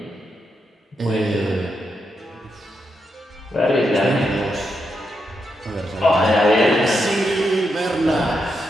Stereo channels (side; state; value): both; normal; correlation 0.83